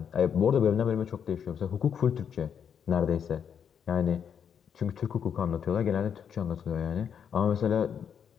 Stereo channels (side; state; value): right; quieter; 7.8 dB